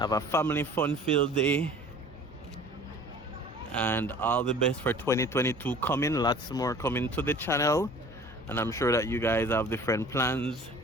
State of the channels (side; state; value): both; normal; correlation 0.46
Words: a family fun-filled day. And all the best for 2022 coming. Lots more coming to the channel. And I'm sure that you guys have different plans,